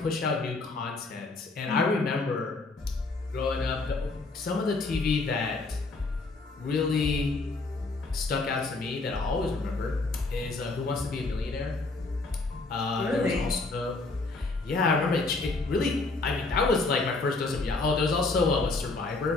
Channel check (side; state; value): right; quieter; 3.5 dB